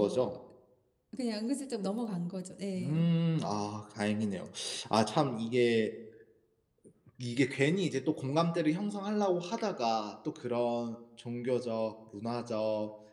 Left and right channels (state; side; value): identical; both; correlation 1.00